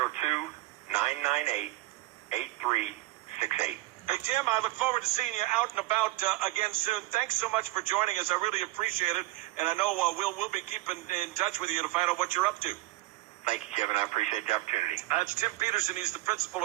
Hey, Tim, I look forward to seeing you out and about again soon. Thanks so much for joining us. I really appreciate it. And I know we'll be keeping in touch with you to find out what you're up to. Thank you, Kevin. I appreciate the opportunity. That's Tim Petersen. He's the principal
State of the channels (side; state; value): left; quieter; 19.2 dB